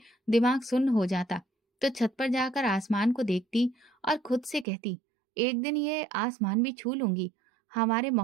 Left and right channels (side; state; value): left; drops out; at 4.7 s